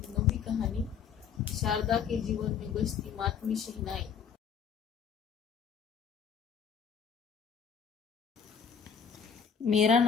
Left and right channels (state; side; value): quieter; right; 7.0 dB